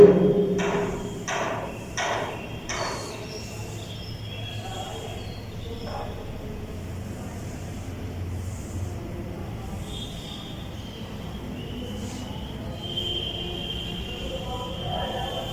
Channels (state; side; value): identical; both; correlation 1.00